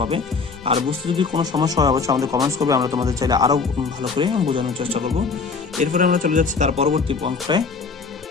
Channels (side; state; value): right; quieter; 4.8 dB